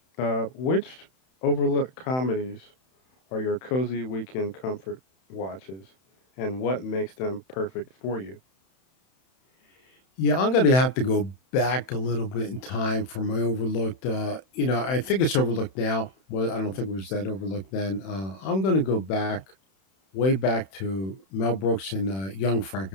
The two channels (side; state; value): right; late; 31 ms